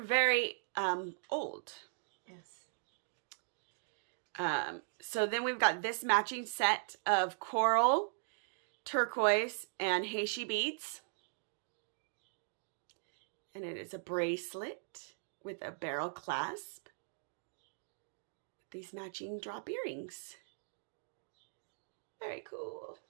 very old. Yes. So then we've got this matching set of coral, turquoise, and Heishi beads. And it is a bracelet with a barrel clasp with these matching drop earrings. Very cool.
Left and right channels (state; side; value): silent; left; digital silence